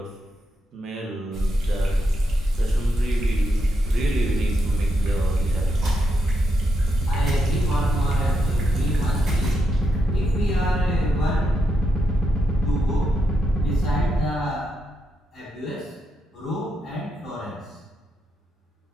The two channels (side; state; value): both; normal; correlation 0.82